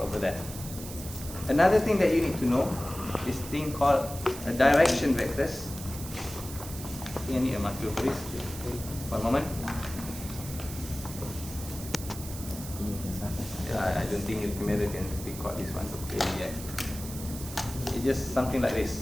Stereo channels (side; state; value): right; noise; hiss, 12 dB below the sound